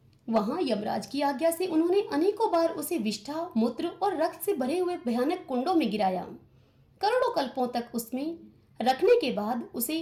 वहां यमराज की आज्ञा से उन्होंने अनेकों बार उसे विष्ठा, मूत्र और रक्त से भरे हुए भयानक कुंडों में गिराया। करोड़ों कल्पों तक उसमें रखने के बाद उसे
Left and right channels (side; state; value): both; identical; correlation 1.00